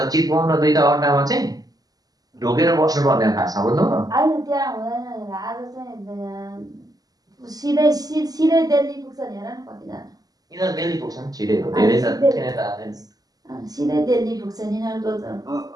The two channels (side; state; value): left; late; 0.18 ms